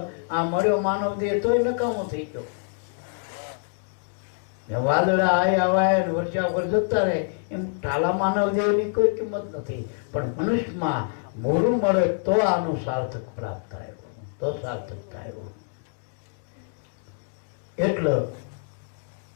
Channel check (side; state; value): right; silent; digital silence